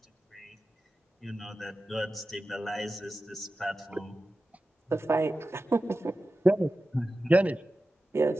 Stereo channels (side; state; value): both; normal; correlation 0.94